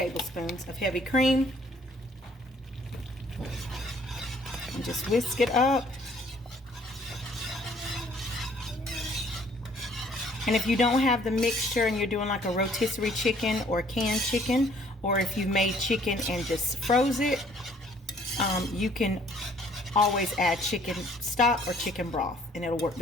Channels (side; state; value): both; normal; correlation 0.60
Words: of heavy cream. And just whisk it up. And if you don't have the mixture and you're doing like a rotisserie chicken or canned chicken, or if you've made chicken and just froze it, you can always add chicken stock or chicken broth and it'll work